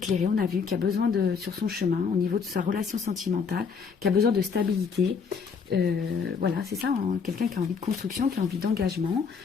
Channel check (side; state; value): right; quieter; 5.8 dB